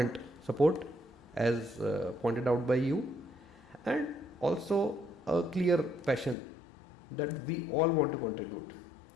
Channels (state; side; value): drops out; right; at 6.4 s